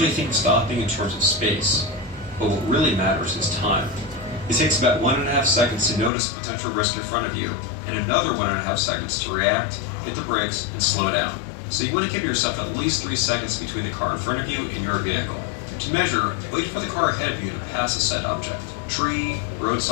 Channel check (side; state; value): right; drops out; at 6.1 s